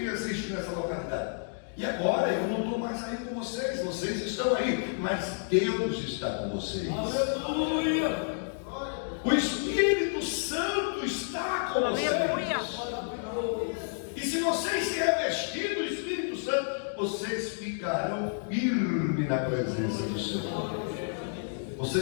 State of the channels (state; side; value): silent; right; digital silence